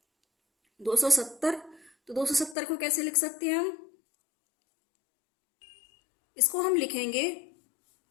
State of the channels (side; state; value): right; drops out; at 2.6 s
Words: 270, तो 270 को कैसे लिख सकते हैं हम? इसको हम लिखेंगे